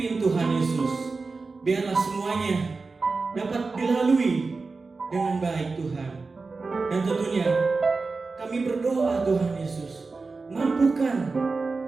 Tuhan Yesus, biarlah semuanya dapat dilalui dengan baik Tuhan. Dan tentunya kami berdoa Tuhan Yesus, mampukan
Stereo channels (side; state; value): left; quieter; 4.0 dB